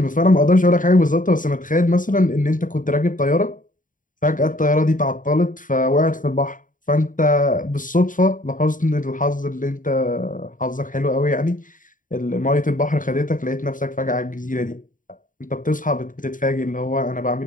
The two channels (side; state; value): right; late; 0.39 ms